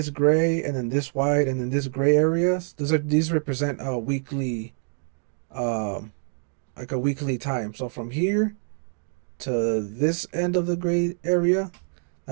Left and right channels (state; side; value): silent; left; digital silence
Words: gray, and then this white, and then this gray areas. These represent a weekly, um, like a weekly time. So from here to this end of the gray area,